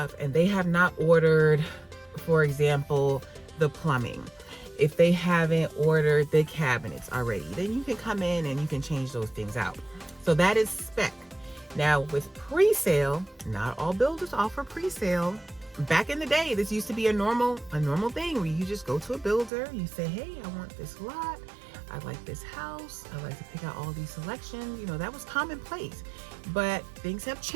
and they have not ordered, for example, the plumbing, if they haven't ordered the cabinets already, then you can come in and you can change those things out. So that is spec. Now with pre-sale, not all builders offer pre-sale. Back in the day, this used to be a normal thing where you just go to a builder, you say, hey, I want this lot, I like this house, I like to pick out all these selections. That was commonplace. But things have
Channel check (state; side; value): drops out; left; at 19.5 s